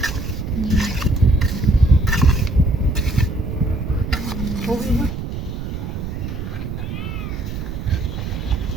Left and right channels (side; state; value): right; noise; rumble, 6 dB below the sound